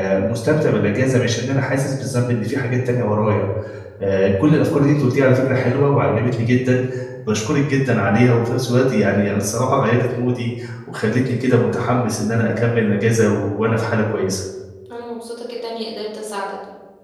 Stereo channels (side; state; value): both; identical; correlation 1.00